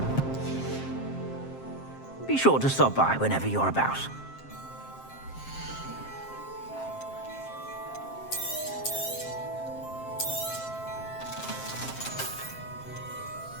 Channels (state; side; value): late; right; 7.6 ms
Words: Be sure to stop by whenever you're about.